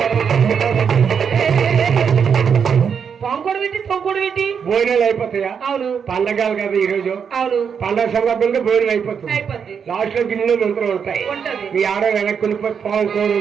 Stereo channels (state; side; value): quieter; left; 6.9 dB